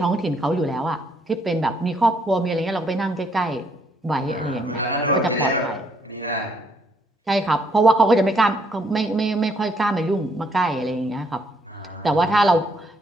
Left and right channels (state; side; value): normal; both; correlation 0.70